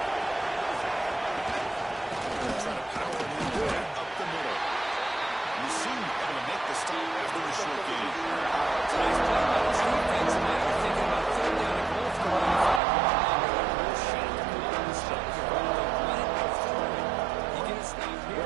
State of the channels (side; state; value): left; drops out; at 12.8 s